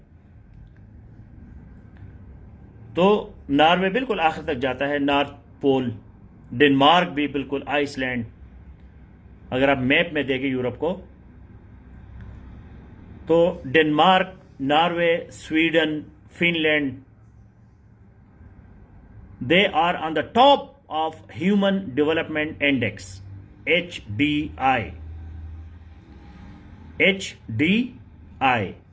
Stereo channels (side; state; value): both; identical; correlation 1.00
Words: تو ناروے بالکل آخر تک جاتا ہے، نارتھ پول. ڈنمارک بھی بالکل، آئس لینڈ. اگر آپ میپ میں دیکھیں یورپ کو تو Denmark, Norway, Sweden, Finland, they are on the top of human development index HDI.